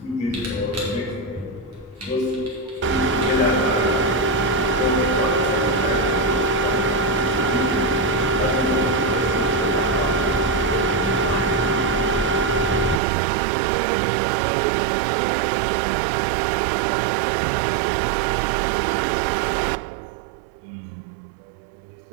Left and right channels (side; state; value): left; drops out; at 13.0 s